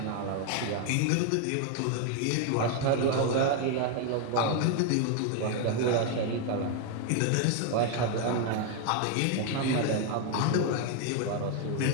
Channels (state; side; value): different; both; correlation 0.01